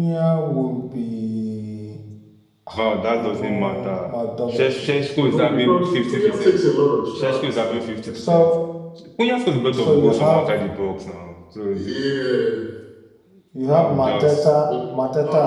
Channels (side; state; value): both; identical; correlation 1.00